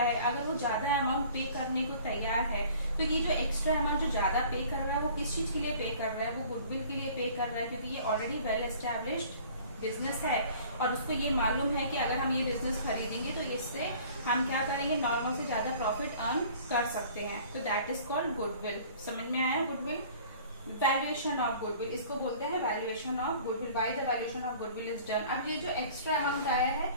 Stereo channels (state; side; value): inverted; both; correlation -0.49